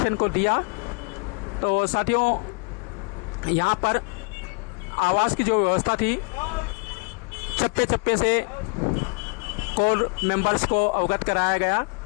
को दिया। तो साथियों, यहाँ पर आवास की जो व्यवस्था थी, चप्पे चप्पे से कोर मेंबर्स को अवगत कराया गया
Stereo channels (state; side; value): quieter; right; 34.0 dB